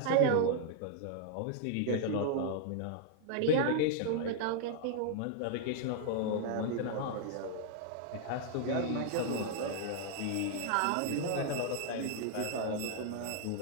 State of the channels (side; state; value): both; different; correlation -0.01